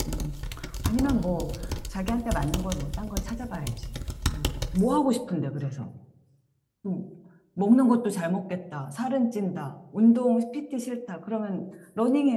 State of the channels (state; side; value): identical; both; correlation 1.00